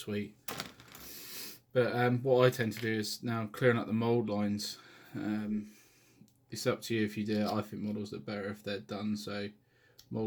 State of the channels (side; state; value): both; identical; correlation 1.00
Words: But what I tend to do is now clearing up the mold lines. It's up to you if you do it. I think models look better if they're done. So